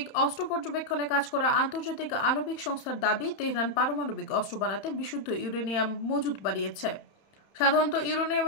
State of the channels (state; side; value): late; right; 31 ms